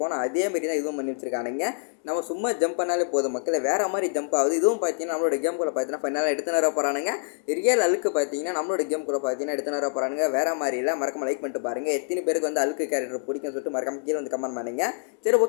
அதே மாதிரி தான் இதுவும் பண்ணி வச்சுருக்கானுங்க. நம்ம சும்மா ஜம்ப் பண்ணாலே போதும் மக்களை. வேறு மாதிரி ஜம்ப் ஆகுது. இதுவும் பார்த்தீங்கன்னா நம்மளோட கேமுக்குள்ள பார்த்தீங்கன்னா ஃபைனலாக எடுத்துன்னு வர போகிறானுங்க. ரியல் அழுக்கு பார்த்தீங்கன்னா நம்மளோட கேமுக்குள்ள பார்த்தீங்கன்னா எடுத்துன்னு வர போகிறானுங்க. வேறு மாதிரி இல்லை. மறக்காம லைக் பண்ணிட்டு பாருங்கள். எத்தனை பேருக்கு வந்து அழுக்கு கேரக்டர் பிடிக்கும்னு சொல்லிட்டு மறக்காம கீழே வந்து கமெண்ட் பண்ணுங்க. சரி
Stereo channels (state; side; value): silent; right; digital silence